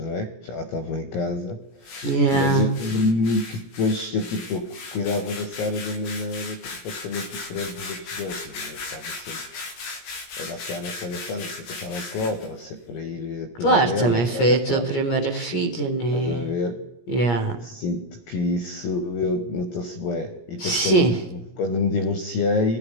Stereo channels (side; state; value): right; late; 17 ms